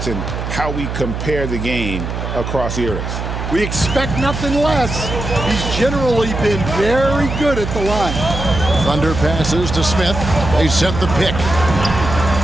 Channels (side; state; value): right; noise; hum, 5 dB below the sound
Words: and how we compare the game across eras. We expect nothing less. He's generally been very good at the line. Thunder passes to Smith. They set the pick.